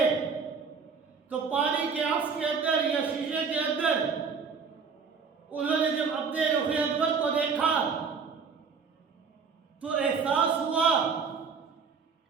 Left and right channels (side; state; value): left; quieter; 5.6 dB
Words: تو پانی کے عکس کے اندر یا شیشے کے اندر انہوں نے جب اپنے رخ انور کو دیکھا تو احساس ہوا